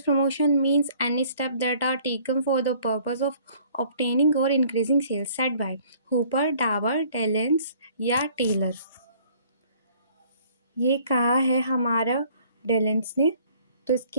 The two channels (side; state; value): both; inverted; correlation -0.57